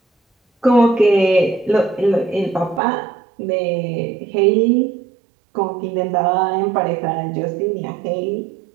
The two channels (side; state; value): left; drops out; at 2.8 s